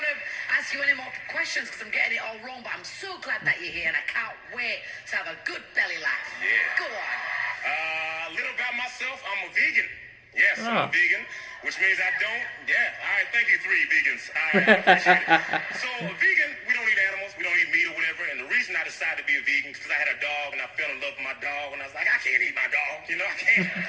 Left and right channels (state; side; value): identical; both; correlation 1.00